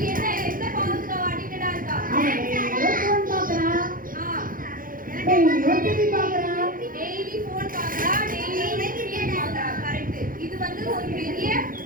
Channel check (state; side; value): late; left; 0.40 ms